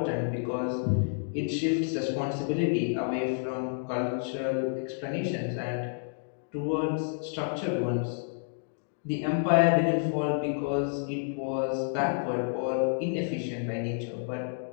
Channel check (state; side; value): silent; right; digital silence